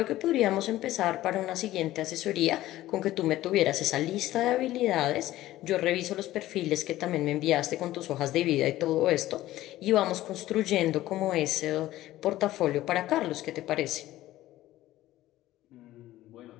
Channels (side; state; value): right; quieter; 15.3 dB